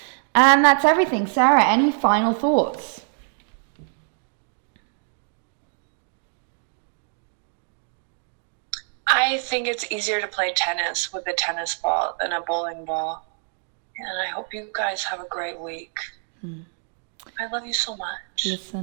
And that's everything. Sarah, any final thoughts? I think it's easier to play tennis with a tennis ball than a bowling ball. And I hope you guys have a great week. I love you so much.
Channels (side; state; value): left; silent; 55 dB below the other